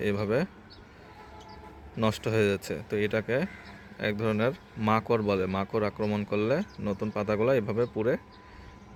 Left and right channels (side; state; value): both; identical; correlation 1.00